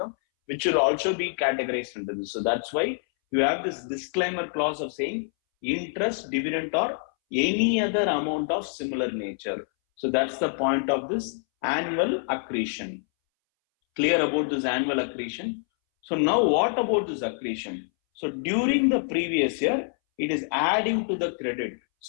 which should also be categorized under this. So that's why you have this disclaimer clause of saying interest, dividend, or any other amount of similar nature. So that's the point of this annual accretion. Clear about this annual accretion? So now what about this accretion? So during the previous year, it is adding to the credit.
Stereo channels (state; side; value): silent; right; 61 dB below the other